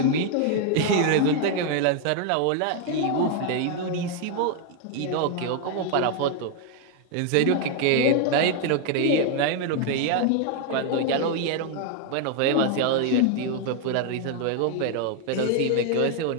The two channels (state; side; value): different; both; correlation 0.00